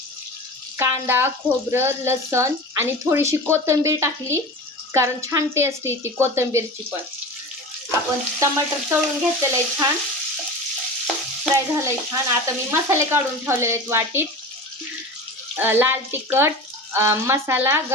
कांदा, खोबरं, लसण आणि थोडीशी कोथिंबीर टाकली कारण छान टेस्ट येते कोथिंबीरची पण. आपण टमाटर तळून घेतलेलं आहे, छान फ्राय झालंय छान. आता मी मसाले काढून ठेवलेले आहेत वाटीत. लाल तिखट, मसाला,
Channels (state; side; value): normal; both; correlation 0.32